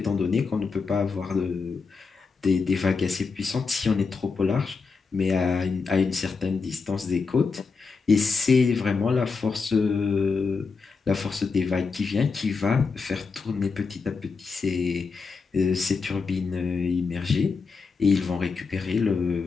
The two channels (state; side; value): quieter; right; 4.8 dB